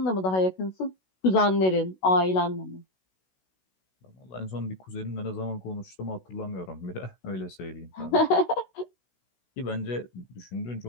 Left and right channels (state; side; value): late; right; 16 ms